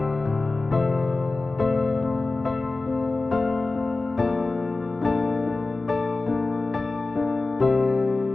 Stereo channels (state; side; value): quieter; right; 3.4 dB